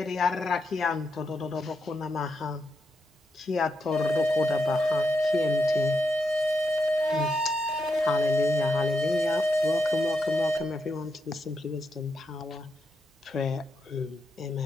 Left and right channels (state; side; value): normal; both; correlation 0.83